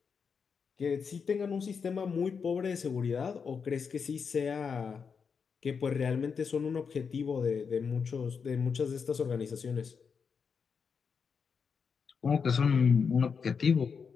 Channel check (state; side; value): quieter; right; 6.0 dB